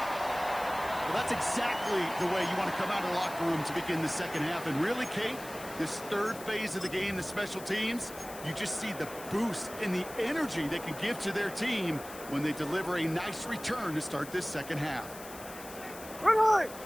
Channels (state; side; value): noise; left; hiss, 15 dB below the sound